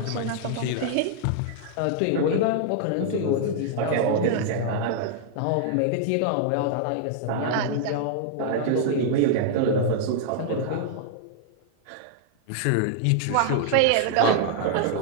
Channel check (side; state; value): both; different; correlation -0.01